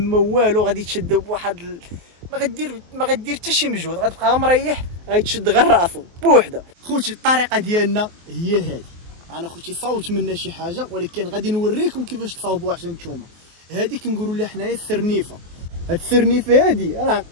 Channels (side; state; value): left; late; 23 ms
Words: والو. غادي تشد بواحد ما غدير حتى شي مجهود، غتبقى غير مريح، غيتشد غير راسو بوحده. خوتي الطريقه ديالنا هي هذه. انا خوتي صوت منا شي حاجه ولكن غادي نوريكم كيفاش تصاوبوها حتى نتوما. هذه كنقولوا لها حنايا السرنيفه. هاد السرنيفه هادي راه